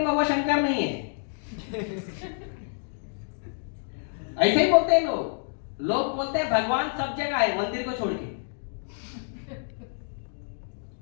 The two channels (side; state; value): right; silent; digital silence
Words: वो शंकर नहीं है। ऐसे ही बोलते हैं लोग। लोग बोलते हैं भगवान सब जगह है मंदिर को छोड़ के।